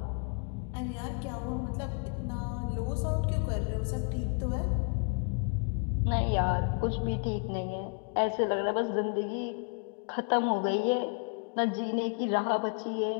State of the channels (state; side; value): quieter; right; 38.1 dB